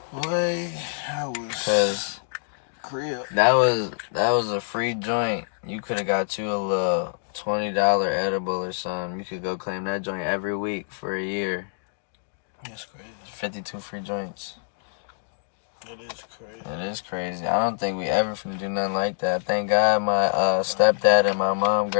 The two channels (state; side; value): silent; right; digital silence